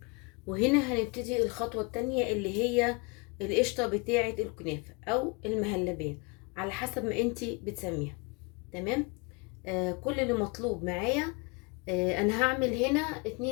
وهنا هنبتدي الخطوة التانية اللي هي القشطة بتاعة الكنافة او المهلبية على حسب ما انتي بتسميها. تمام، كل اللي مطلوب معايا انا هعمل هنا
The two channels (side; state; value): right; quieter; 30.1 dB